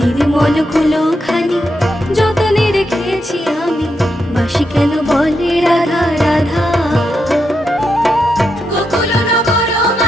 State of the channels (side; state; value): both; normal; correlation 0.84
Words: কুলো খানি যতনে রেখেছি আমি, বাঁশি কেন বলে রাধা রাধা।